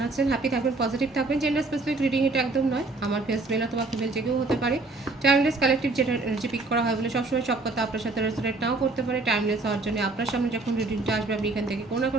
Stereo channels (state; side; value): quieter; left; 3.3 dB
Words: আছেন? হ্যাপি থাকবেন, পজিটিভ থাকবেন। জেন্ডার স্পেসিফিক রিডিং এটা একদম নয়। আমার ফেস মেল অথবা ফিমেল যে কেউ হতে পারে। টাইমলেস কালেকটিভ যেটা এনার্জি পিক করা হয় বলে সবসময় সব কথা আপনার সাথে রেজোনেট নাও করতে পারে। টাইমলেস হওয়ার জন্য আপনার সামনে যখন রিডিংটা আসবে আপনি এখান থেকে কোনো না